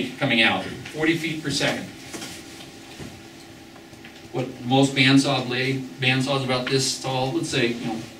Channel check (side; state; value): both; identical; correlation 1.00